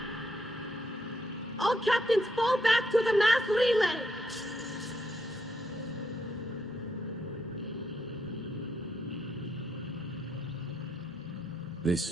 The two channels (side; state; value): both; normal; correlation 0.78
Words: All captains fall back to the mass relay.